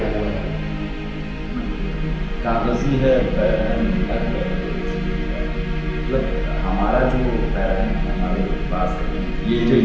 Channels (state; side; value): identical; both; correlation 1.00